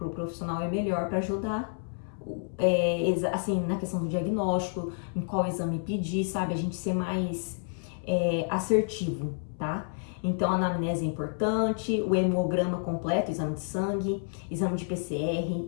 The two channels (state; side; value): silent; right; 58 dB below the other